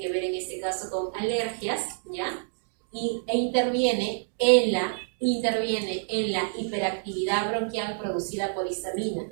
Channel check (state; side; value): silent; left; digital silence